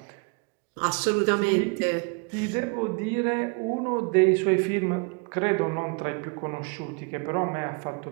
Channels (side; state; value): left; quieter; 32.8 dB